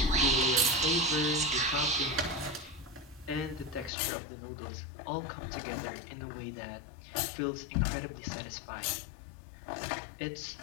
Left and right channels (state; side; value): drops out; right; at 3.9 s